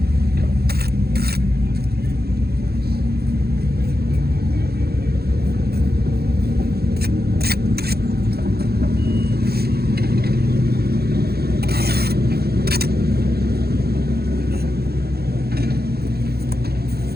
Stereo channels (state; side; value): late; left; 0.46 ms